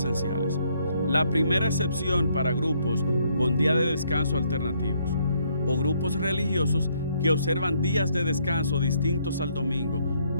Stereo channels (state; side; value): inverted; both; correlation -0.69